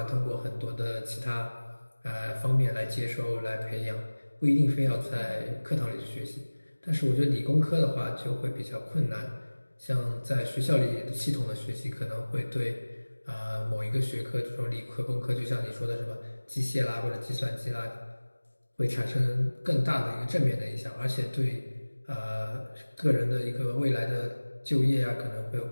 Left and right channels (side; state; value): both; inverted; correlation -1.00